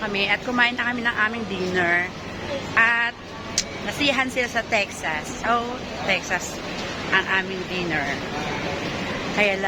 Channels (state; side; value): identical; both; correlation 1.00